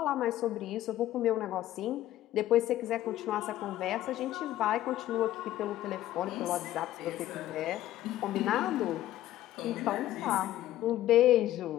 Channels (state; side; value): quieter; right; 13.9 dB